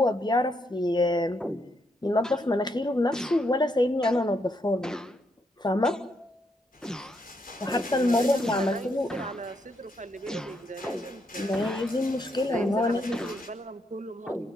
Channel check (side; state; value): both; normal; correlation 0.77